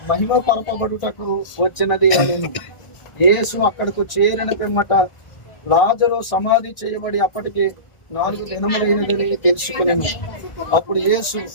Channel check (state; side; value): late; right; 1.4 ms